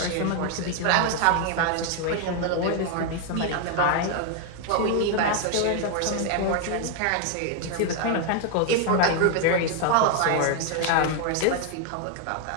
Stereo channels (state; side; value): different; both; correlation 0.00